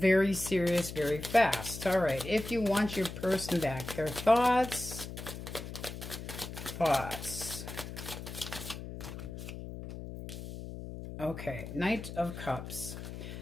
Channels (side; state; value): left; noise; hum, 9 dB below the sound